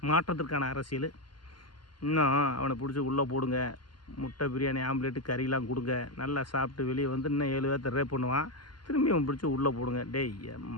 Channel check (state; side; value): late; right; 0.71 ms